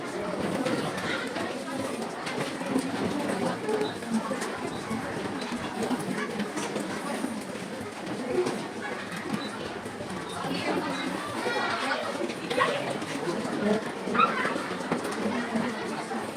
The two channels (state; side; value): identical; both; correlation 1.00